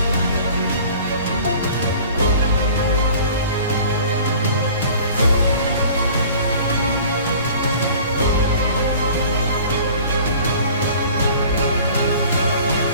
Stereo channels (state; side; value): inverted; both; correlation -0.47